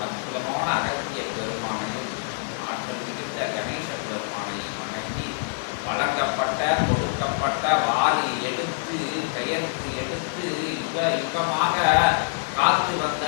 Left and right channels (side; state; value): right; silent; 61 dB below the other